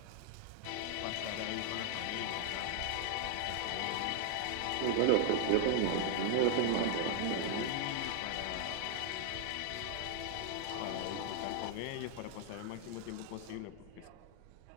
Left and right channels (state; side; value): different; both; correlation 0.00